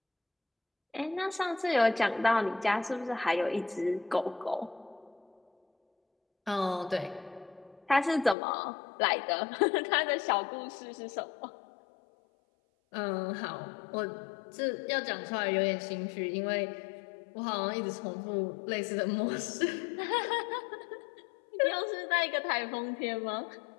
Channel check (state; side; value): drops out; right; at 8.3 s